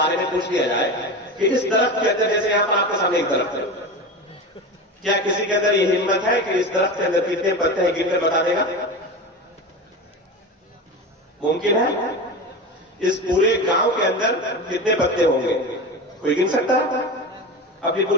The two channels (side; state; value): both; normal; correlation 0.26